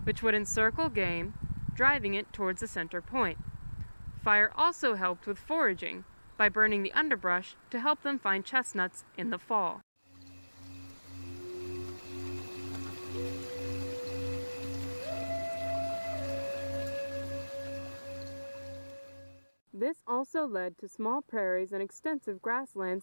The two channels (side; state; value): both; inverted; correlation -1.00